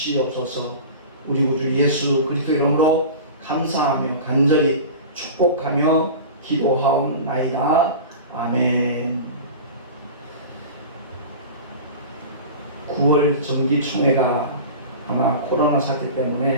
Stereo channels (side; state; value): both; inverted; correlation -0.33